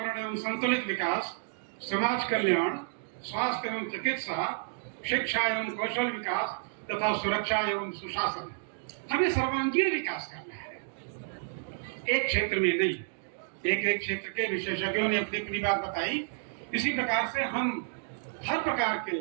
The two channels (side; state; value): left; silent; digital silence